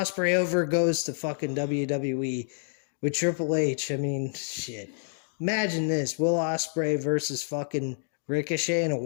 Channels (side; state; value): right; silent; digital silence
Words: over goes to fucking WWE with Triple H. I mean, shit. Imagine this, Will Ospreay versus fucking Ricochet in a